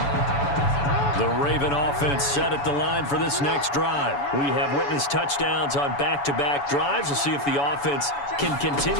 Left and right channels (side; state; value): right; late; 7.0 ms